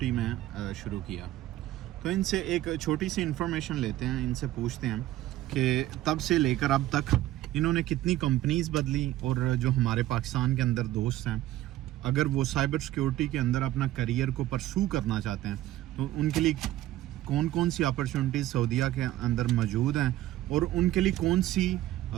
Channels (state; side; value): quieter; left; 14.6 dB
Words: में शुरू किया। तो इनसे एक छोटी सी इन्फॉर्मेशन लेते हैं, इनसे पूछते हैं कि तब से लेकर अब तक इन्होंने कितनी कंपनीज बदली, और जो हमारे पाकिस्तान के अंदर दोस्त हैं, अगर वो साइबर सिक्योरिटी के अंदर अपना करियर को परसू करना चाहते हैं तो उनके लिए कौन कौन सी अपॉर्चुनिटीज़ सऊदीया के अंदर मौजूद हैं और उनके लिए कौन सी